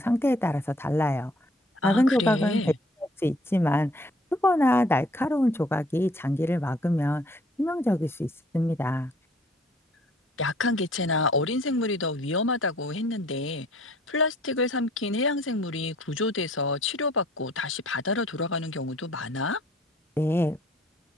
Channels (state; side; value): normal; both; correlation 0.58